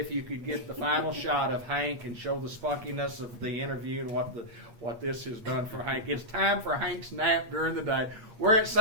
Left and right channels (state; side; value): late; left; 8.3 ms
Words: you could get the final shot of Hank and show the spunkiness of the interview and what this has done for Hank. It's time for Hank's nap during the day. We're at